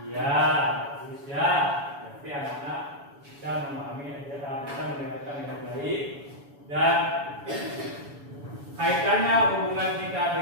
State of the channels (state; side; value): late; left; 7.1 ms